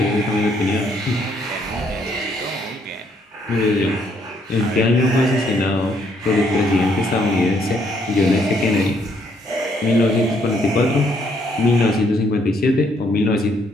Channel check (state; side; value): normal; both; correlation 0.70